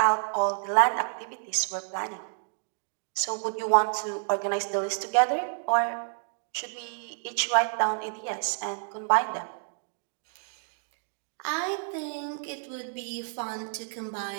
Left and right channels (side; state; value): left; silent; 58 dB below the other